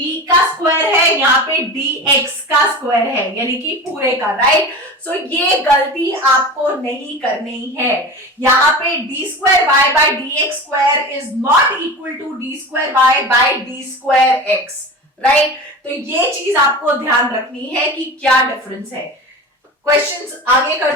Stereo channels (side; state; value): both; normal; correlation 0.31